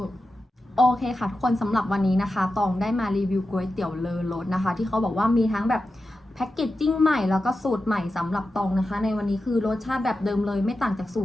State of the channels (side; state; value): both; normal; correlation 0.91